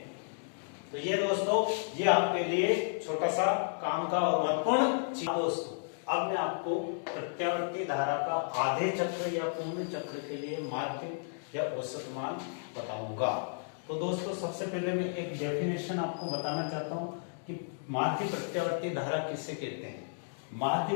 तो ये दोस्तों ये आपके लिए छोटा सा काम का और महत्वपूर्ण चीज। दोस्तों अब मैं आपको प्रत्यावर्ती धारा का आधे चक्र या पूर्ण चक्र के लिए माध्य या औसत मान बताऊंगा। तो दोस्तों सबसे पहले मैं एक डेफिनेशन आपको बताना चाहता हूं कि माध्य प्रत्यावर्ती धारा किसे कहते हैं।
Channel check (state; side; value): silent; right; digital silence